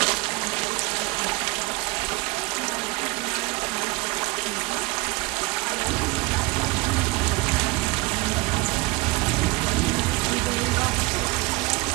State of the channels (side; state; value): left; quieter; 23.8 dB